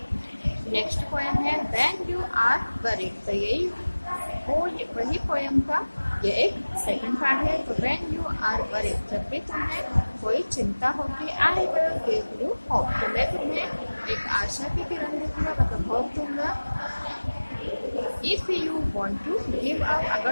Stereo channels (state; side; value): inverted; both; correlation -1.00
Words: next poem है व्हेन यू आर वरीड। तो यही वही पोएम का ये एक सेकंड पार्ट है। तो व्हेन यू आर वरीड, जब भी तुम्हें कोई चिंता होगी, I will give you hope, तो मैं तुम्हें एक आशा की किरण दूंगा, मतलब होप दूंगा। If you want to give up,